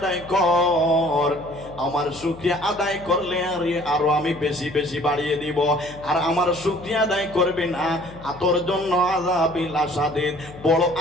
কর। আমার শুকরিয়া আদায় করলে আরো আমি বেশি বেশি বাড়িয়ে দিব। আর আমার শুকরিয়া আদায় করবে না, তোর জন্য আযাবি লাশাদীদ, বড়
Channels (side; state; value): left; noise; hum, 18 dB below the sound